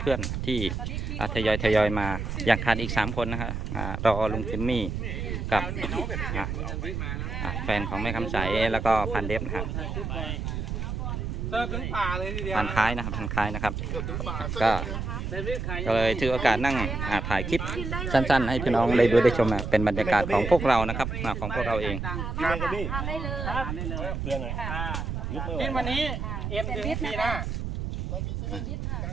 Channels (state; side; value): noise; right; rumble, 3 dB below the sound